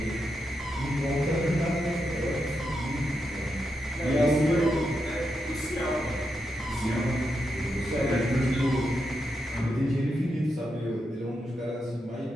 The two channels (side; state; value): both; normal; correlation 0.85